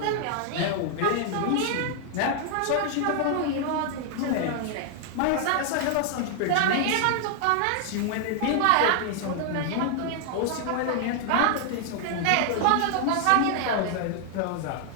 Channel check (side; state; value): both; different; correlation 0.00